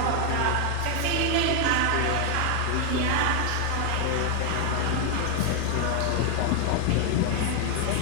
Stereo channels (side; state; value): both; different; correlation 0.00